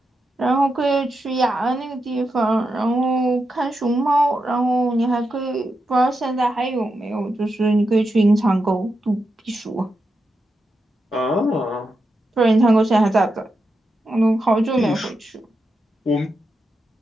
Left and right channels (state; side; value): normal; both; correlation 0.87